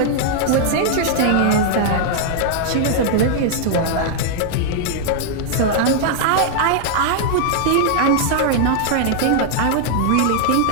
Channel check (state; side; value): different; both; correlation -0.01